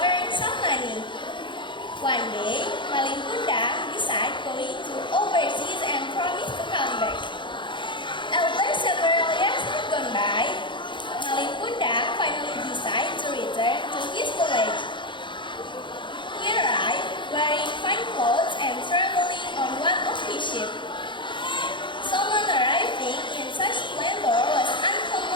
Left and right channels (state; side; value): late; right; 0.23 ms